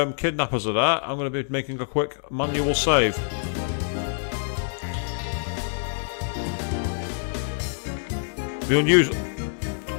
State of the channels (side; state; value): right; silent; 61 dB below the other